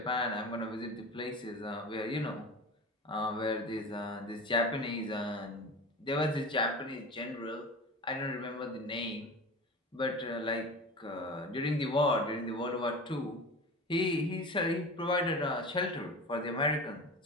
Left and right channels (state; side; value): normal; both; correlation 0.32